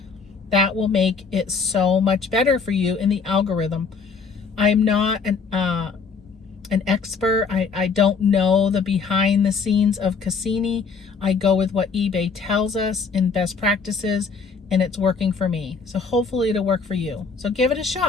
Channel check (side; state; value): right; quieter; 5.2 dB